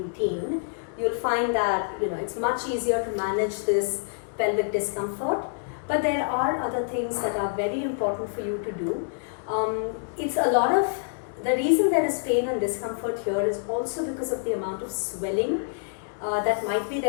you'll find that it's much easier to manage this pelvic discomfort. But there are other things that are very important for you to do. The reason there is pain and discomfort here is also because of the amount of swelling that might be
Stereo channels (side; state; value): right; silent; digital silence